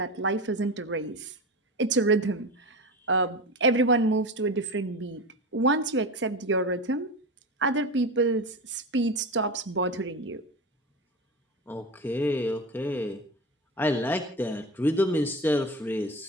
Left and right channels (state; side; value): normal; both; correlation 0.25